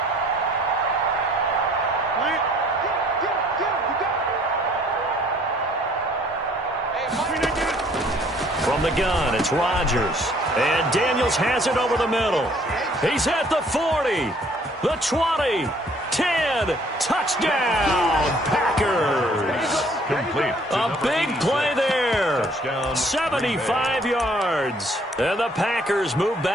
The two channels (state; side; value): normal; both; correlation 0.59